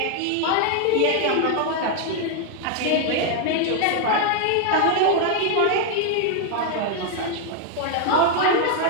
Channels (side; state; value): both; different; correlation 0.01